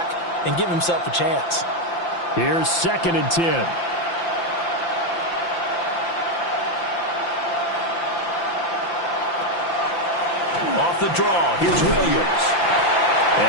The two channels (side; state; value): right; late; 5.8 ms